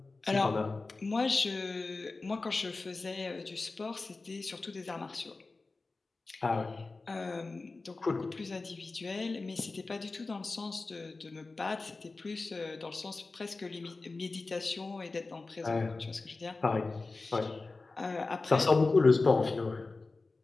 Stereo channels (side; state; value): right; quieter; 3.6 dB